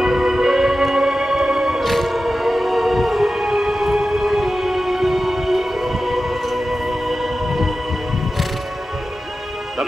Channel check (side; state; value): both; normal; correlation 0.93